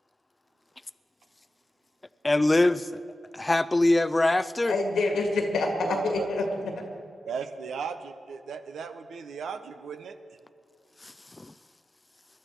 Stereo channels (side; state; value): both; normal; correlation 0.93